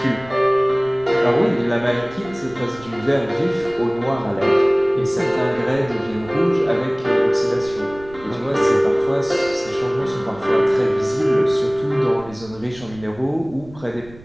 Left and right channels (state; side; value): noise; right; rumble, 21 dB below the sound